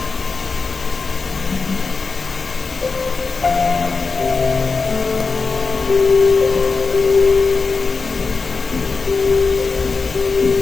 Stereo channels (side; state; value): right; quieter; 4.5 dB